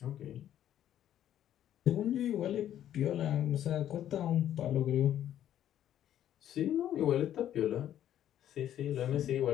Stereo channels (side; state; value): right; quieter; 11.2 dB